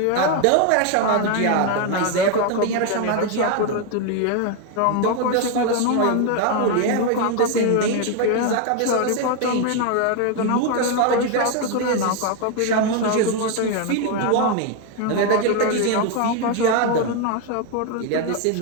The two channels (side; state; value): both; different; correlation 0.01